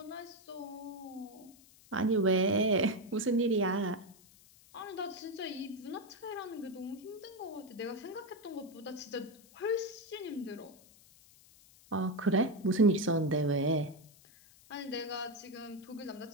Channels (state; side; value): noise; left; hiss, 25 dB below the sound